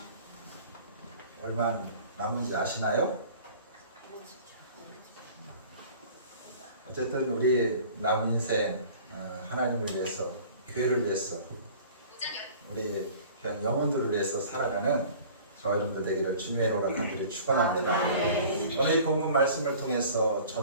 얼마 남은지 아시나요? 어쨌든 우리 남은 인생 하나님을 위해서, 교회를 위해서, 우리 그냥 영혼들을 위해서 살아가는 저와 여러분들 되기를 주님의 이름으로 간절히 축원합니다. 오늘 이 본문 말씀을 통해서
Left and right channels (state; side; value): inverted; both; correlation -0.46